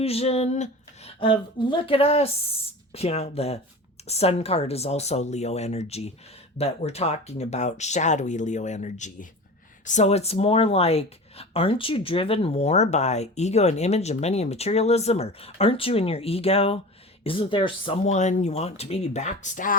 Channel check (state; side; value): normal; both; correlation 0.34